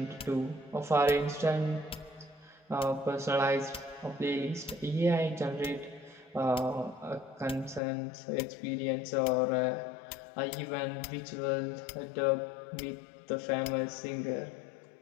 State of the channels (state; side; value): drops out; right; at 7.8 s